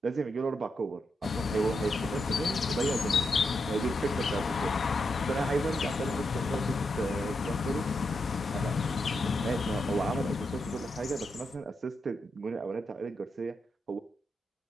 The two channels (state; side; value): normal; both; correlation 0.84